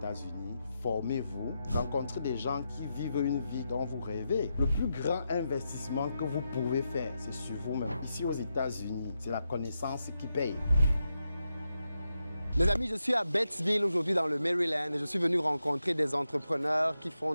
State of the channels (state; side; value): inverted; both; correlation -0.86